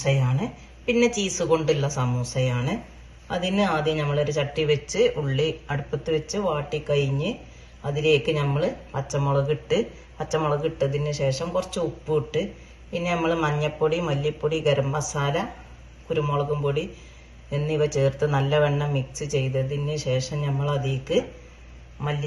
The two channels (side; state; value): both; identical; correlation 1.00